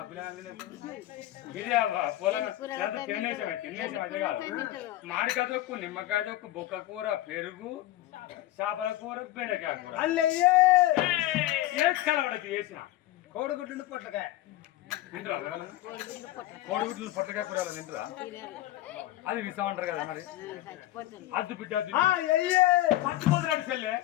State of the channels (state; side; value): quieter; right; 15.5 dB